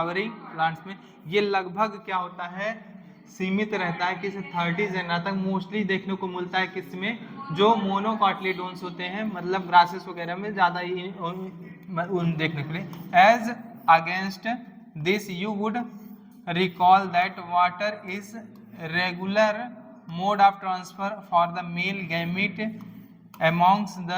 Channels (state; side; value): identical; both; correlation 1.00